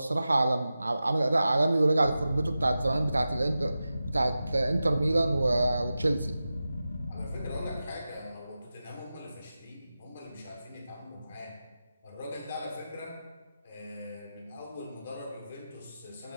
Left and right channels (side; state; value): both; inverted; correlation -0.93